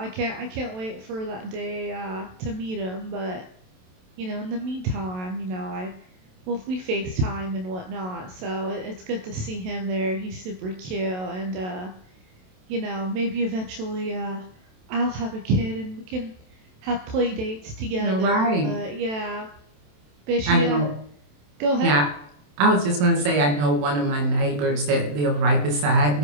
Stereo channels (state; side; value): late; left; 27 ms